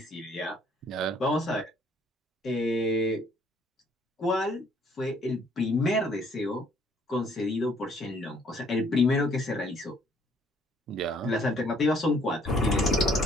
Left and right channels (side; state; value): both; normal; correlation 0.63